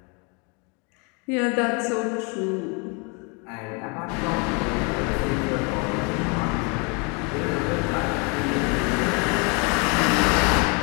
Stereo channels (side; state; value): right; quieter; 32.2 dB